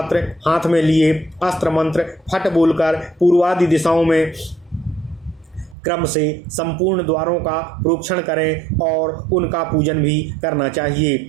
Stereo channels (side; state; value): left; drops out; at 5.8 s